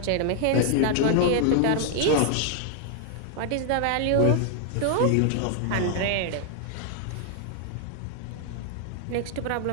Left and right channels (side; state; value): both; different; correlation 0.00